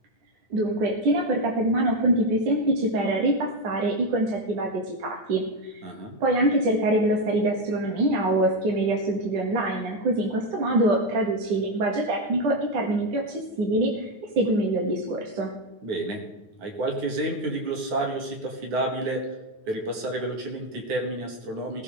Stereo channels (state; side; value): late; left; 9.5 ms